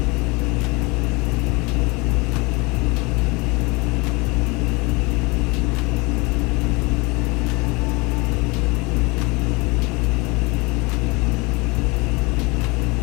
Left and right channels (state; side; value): quieter; right; 26.5 dB